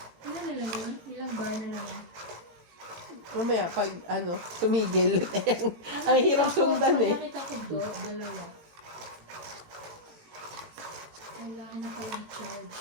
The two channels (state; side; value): late; left; 18 ms